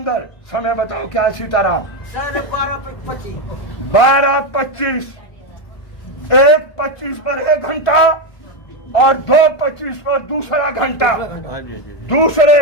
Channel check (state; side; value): late; right; 1.5 ms